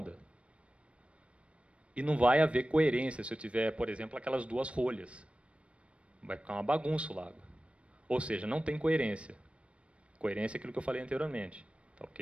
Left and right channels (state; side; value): late; left; 0.061 ms